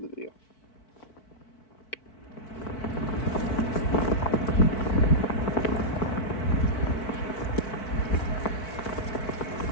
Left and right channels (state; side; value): late; right; 4.5 ms